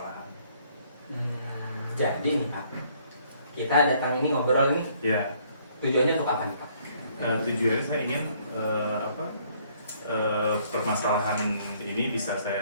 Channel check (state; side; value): inverted; both; correlation -0.64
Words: Jadi nih Pak, kita datang ini ngobrol ini. Ya. Tujuannya untuk apa nih Pak? Tujuannya saya ingin permasalahan ini bisa